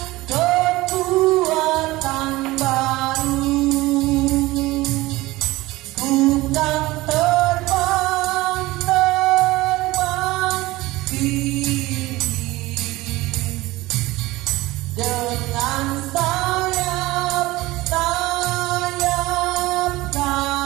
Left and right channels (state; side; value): quieter; left; 19.3 dB